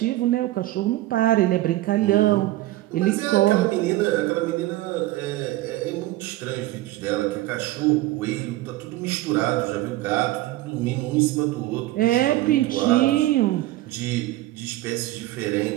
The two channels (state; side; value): quieter; left; 16.6 dB